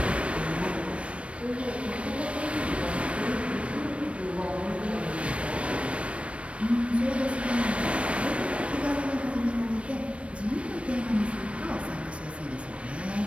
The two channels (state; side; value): late; left; 0.061 ms